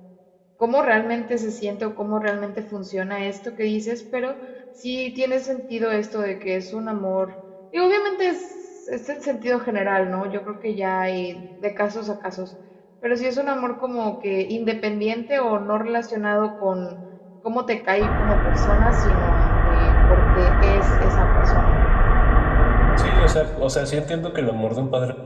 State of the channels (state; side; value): identical; both; correlation 1.00